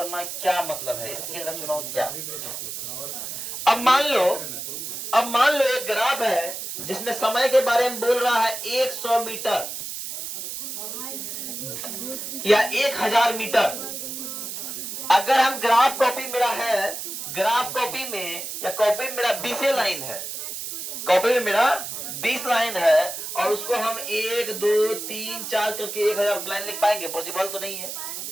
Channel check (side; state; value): right; noise; hiss, 6 dB below the sound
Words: क्या मतलब है? स्केल का चुनाव क्या? अब मान लो एक ग्राफ है जिसमें समय के बारे में बोल रहा है 100 मीटर या 1000 मीटर। अगर हम ग्राफ कॉपी मेरा है, ग्राफ कॉपी में या कॉपी में मेरा 20 लाइन है, कॉपी में मेरा 20 लाइन है, और उसको हम 1 2 3 4 करके 1000 लाइन लिख पाएंगे? पॉसिबल तो नहीं है।